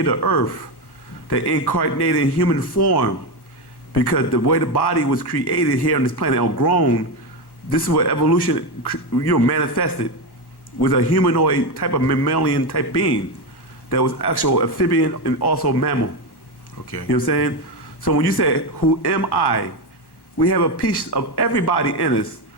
to Earth, they incarnate in human form because the way the body was created here on this planet or grown, this is where evolution manifested, was a humanoid type of mammalian type being that was actual amphibian and also mammal. Okay. You know what I'm saying? So when you say, who am I? We have a piece of everybody in us.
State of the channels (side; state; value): right; late; 1.1 ms